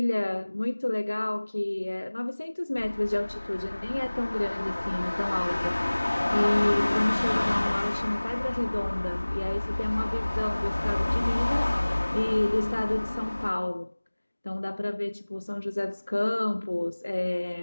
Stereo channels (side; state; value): both; inverted; correlation -1.00